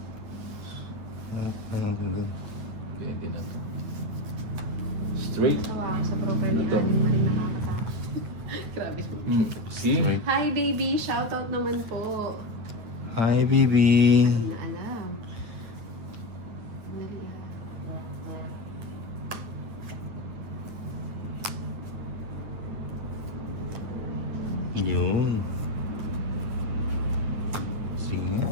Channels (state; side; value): late; left; 9.2 ms